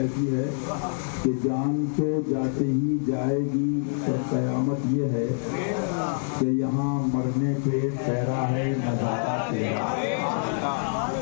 है कि जान तो जाते ही जाएगी, पर कयामत ये है कि यहाँ मरने पे ठहरा है नजारा तेरा।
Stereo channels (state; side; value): silent; right; digital silence